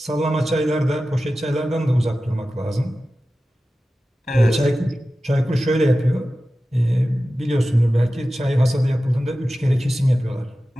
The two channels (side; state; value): both; normal; correlation 0.94